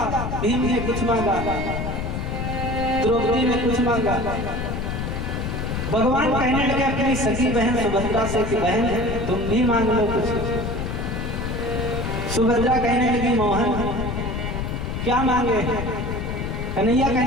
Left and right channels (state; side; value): noise; left; rumble, 3 dB below the sound